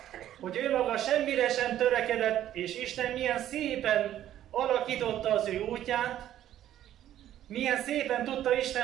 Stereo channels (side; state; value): left; quieter; 12.0 dB